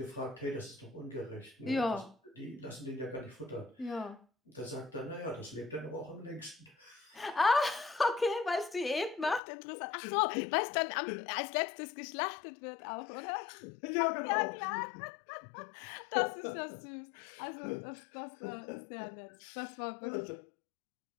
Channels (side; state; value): right; drops out; at 9.4 s